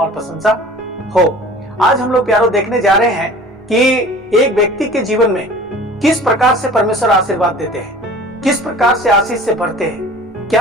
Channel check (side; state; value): both; normal; correlation 0.44